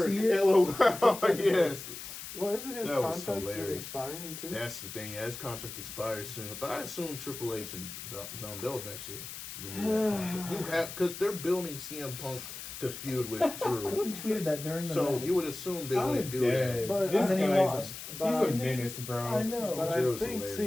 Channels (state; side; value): noise; left; hiss, 10 dB below the sound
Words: LOL. Yes. Well, isn't his contract expiring too? That's the thing. Yeah, his contract expires soon. But I assume Triple H and they'll eventually renew that contract. You have because they're building CM Punk to feud with Drew. Who tweeted that during the match? You would assume they wouldn't do that. But this he lost. He's a menace, bro. I know. But Drew's I think